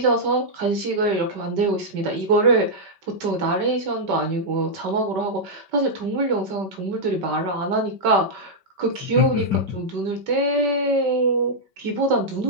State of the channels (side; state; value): left; late; 5.2 ms